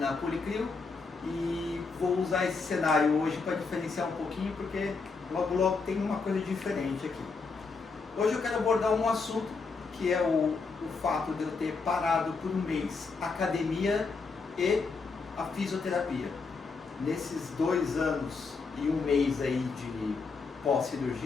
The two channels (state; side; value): quieter; right; 4.5 dB